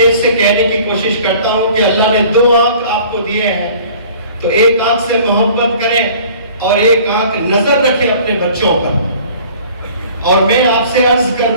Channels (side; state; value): both; inverted; correlation -0.49